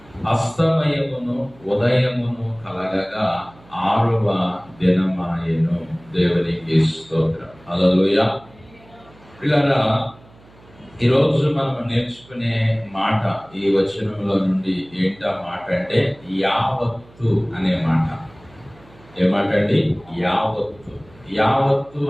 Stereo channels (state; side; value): noise; right; hum, 26 dB below the sound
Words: అస్తమయమును ఉదయమును కలగగా 6వ దినమాయెను. దేవునికి స్తోత్రం. హల్లెలూయా. పిల్లరా, ఈరోజు మనం నేర్చుకునే మాట ఈ వచనంలో నుండి ఏంటా మాట అంటే యావత్తు అనే మాట. ఏ మాట అండి? యావత్తు. యావత్తు